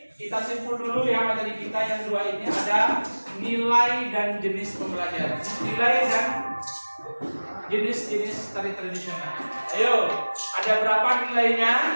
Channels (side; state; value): both; inverted; correlation -1.00